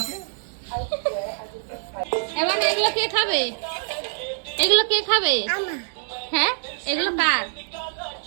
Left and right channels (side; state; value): left; silent; digital silence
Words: এবার এগুলো কে খাবে? এগুলো কে খাবে? হ্যাঁ এগুলো কার?